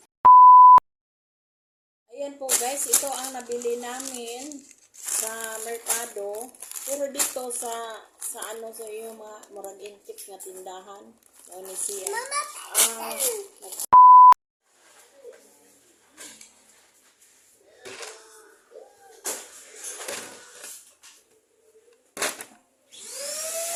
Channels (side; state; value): both; identical; correlation 1.00